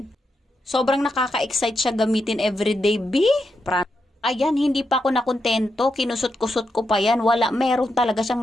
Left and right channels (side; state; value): both; normal; correlation 0.84